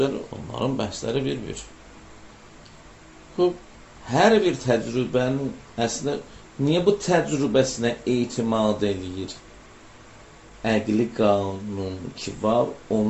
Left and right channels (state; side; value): identical; both; correlation 1.00